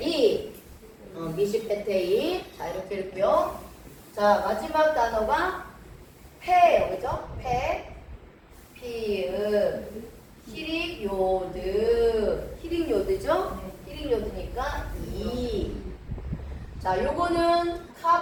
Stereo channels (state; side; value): identical; both; correlation 1.00